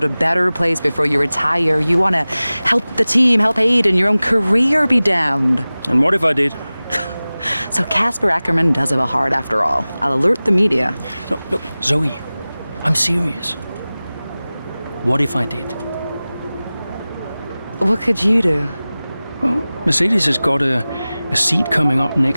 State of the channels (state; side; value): inverted; both; correlation -0.98